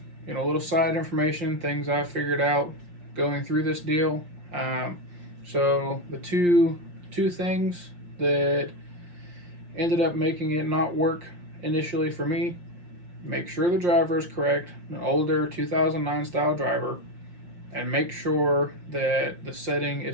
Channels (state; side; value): late; left; 5.7 ms